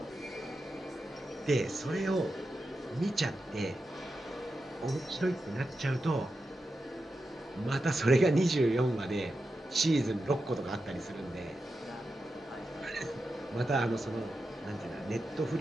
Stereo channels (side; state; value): both; normal; correlation 0.89